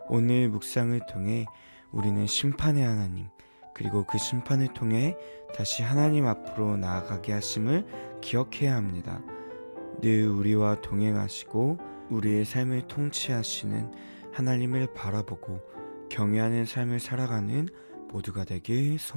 오늘 묵상을 통해 우리는 심판의 하나님, 그리고 그 심판을 통해 다시 하나님 앞으로 나아가게 하심을 기억해야 합니다. 늘 우리와 동행하시고 우리의 삶을 통치하시는 하나님을 바라보고 경외하는 삶을 살아가는 모두가 되길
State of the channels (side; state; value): both; inverted; correlation -1.00